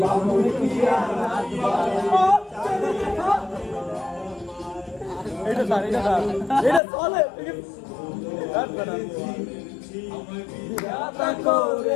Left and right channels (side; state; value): right; drops out; at 6.8 s